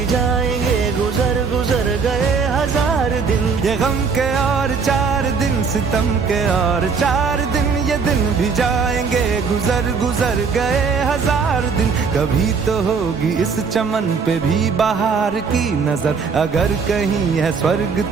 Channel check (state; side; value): quieter; left; 5.4 dB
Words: जाएंगे गुजर गुजर गए 1000 दिन। ये गम के और 4 दिन, सितम के और 4 दिन, ये दिन भी जाएंगे गुजर गुजर गए 1000 दिन। कभी तो होगी इस चमन पे भी बहार की नजर, अगर कहीं है स्वर्ग